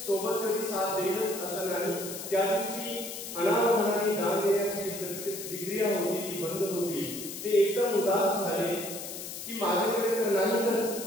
सोबत कधी साथ देईलच असं नाही। त्या दिवशी अनावधानाने दान देण्याची प्रक्रिया होती ती बंद होती। ते एकदम उदास झाले की माझ्याकडे तर नाहीच,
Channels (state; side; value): noise; left; hiss, 9 dB below the sound